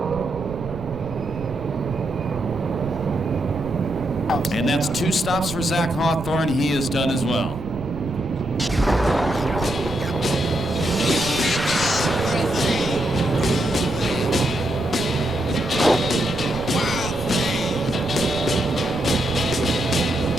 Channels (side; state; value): right; noise; rumble, 11 dB below the sound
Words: And that's 2 stops for Zach Hawthorne. He is done as well.